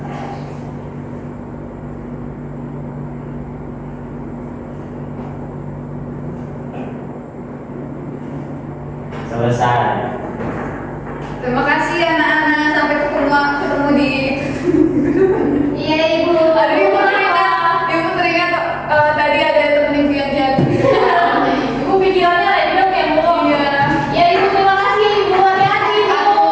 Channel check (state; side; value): identical; both; correlation 1.00